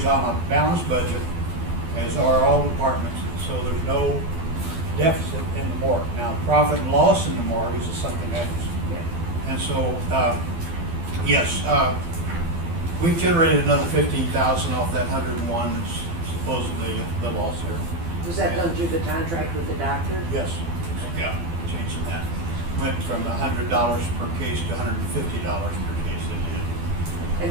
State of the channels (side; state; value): left; late; 12 ms